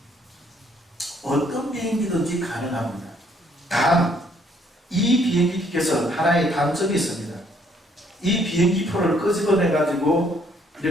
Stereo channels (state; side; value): normal; both; correlation 0.66